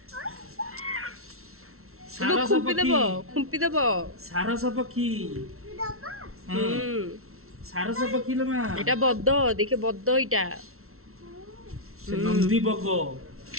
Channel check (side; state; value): left; late; 0.62 ms